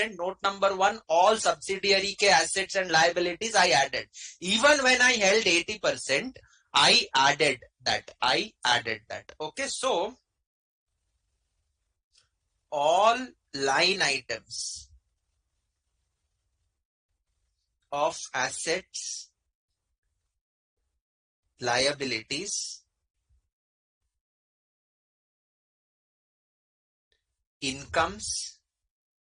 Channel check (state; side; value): identical; both; correlation 1.00